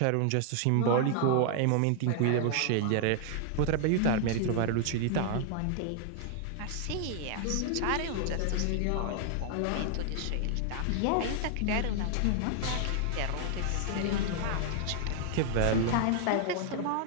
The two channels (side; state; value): both; different; correlation 0.00